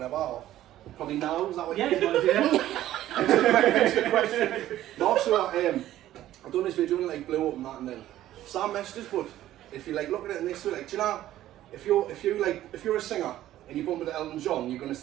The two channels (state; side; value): quieter; left; 13.5 dB